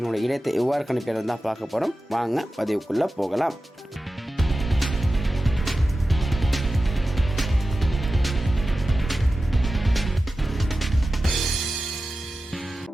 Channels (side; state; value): both; normal; correlation 0.94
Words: இடத்தை எவ்வாறு கணிப்பது தான் பார்க்க போகிறோம். வாங்க பதிவுக்குள்ளே போகலாம்.